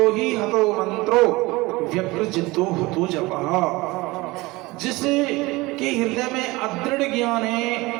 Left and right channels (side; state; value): left; quieter; 21.8 dB